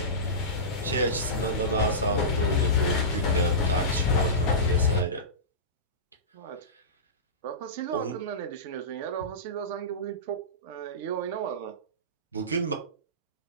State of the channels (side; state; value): both; normal; correlation -0.19